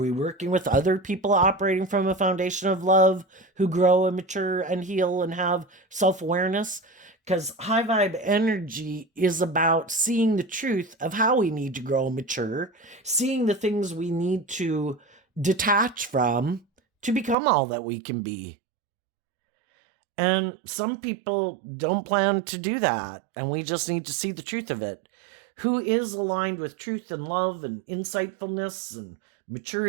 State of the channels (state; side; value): drops out; left; at 17.4 s